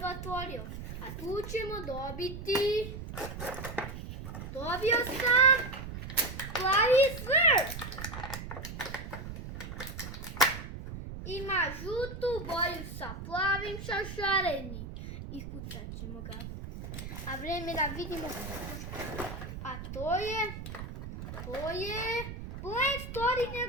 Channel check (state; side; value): noise; right; rumble, 9 dB below the sound